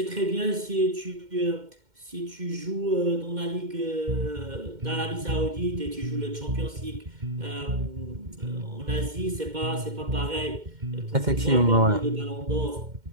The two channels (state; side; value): late; left; 2.1 ms